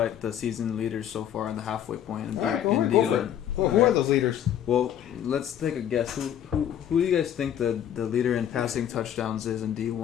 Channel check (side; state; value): right; quieter; 10.1 dB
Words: the season leaders so far in the halfway point. All right, go in for it. D1. Who are those leaders? Well, let's take a guess. Who do you guys think the leader in passing touchdowns is in